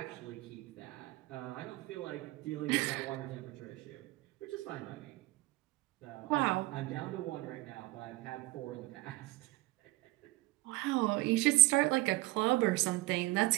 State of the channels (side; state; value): left; quieter; 21.3 dB